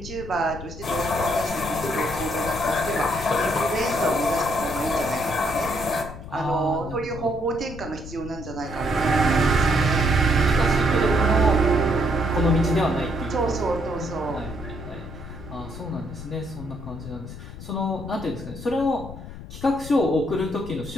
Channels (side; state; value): left; noise; rumble, 12 dB below the sound